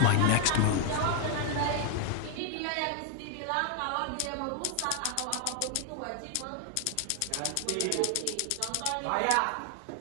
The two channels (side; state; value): both; different; correlation 0.00